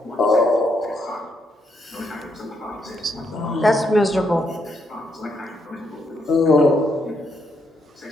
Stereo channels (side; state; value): both; normal; correlation 0.76